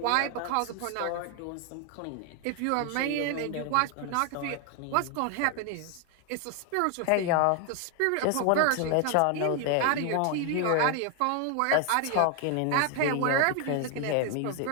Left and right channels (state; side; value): different; both; correlation 0.00